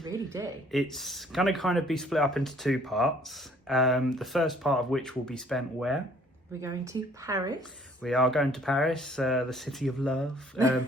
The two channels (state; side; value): normal; both; correlation 0.59